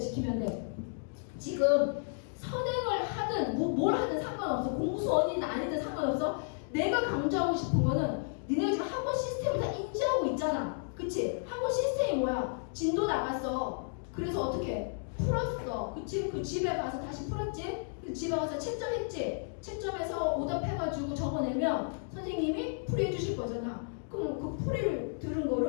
돼. 지금 선행을 하든 뭘 하든 상관없어. 공수원이든 아니든 상관없어. 내가 강조하고 싶은 거는 니네가 지금 학원 시스템을 다 인지하고 있잖아. 그치? 학원 시스템이 뭐야? 진도 나갔어. 그래서 어떻게? 풀었어. 그치? 그 집에 가서 다시 풀었지? 그 집에 가서 채점했지? 채점해서 오답해가지고 적어내면 선생님이 풀이해 주실 거잖아. 그럼 그 풀이를 들은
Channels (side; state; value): right; silent; digital silence